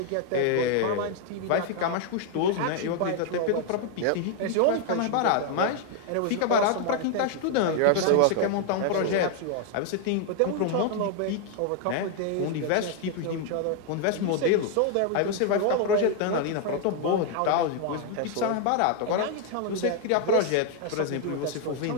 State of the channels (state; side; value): different; both; correlation 0.00